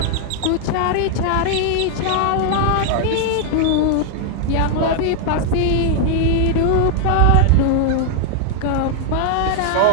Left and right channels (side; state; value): both; different; correlation 0.00